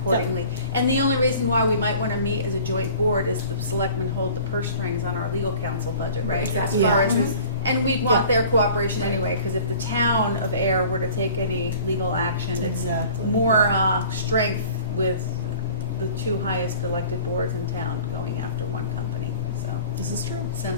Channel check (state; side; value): inverted; both; correlation -0.46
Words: And the only reason why we might want to meet as a joint board is the selectmen hold the purse strings on our legal counsel budget, right? Exactly. As far as and we'd want their cooperation anyway, because if the town of Ayer were to take any legal action, it's more strength with the 2 highest elected boards in town going after one company. So This is true.